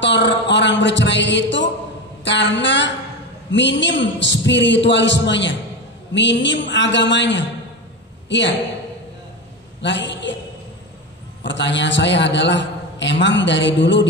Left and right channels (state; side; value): normal; both; correlation 0.20